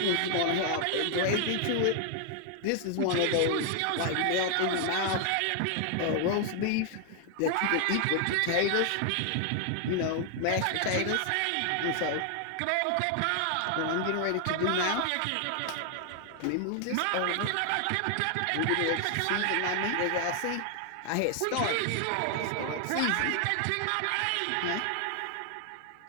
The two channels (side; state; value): both; different; correlation 0.00